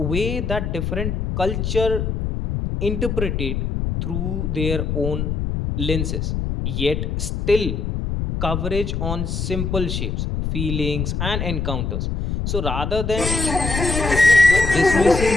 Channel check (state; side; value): noise; left; rumble, 2 dB below the sound